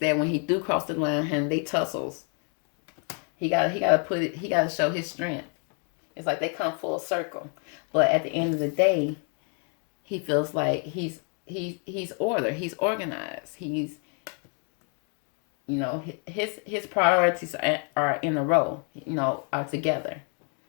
when he do cross the line and they tussles, he gotta show his strength. It's like they come full circle, but at the end of the day, he feels like he's order. He's organized. He's, his priorities are in a row. Are together.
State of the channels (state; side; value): quieter; right; 39.9 dB